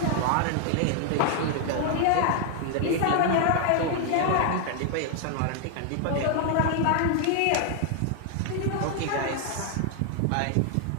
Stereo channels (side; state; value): both; different; correlation 0.00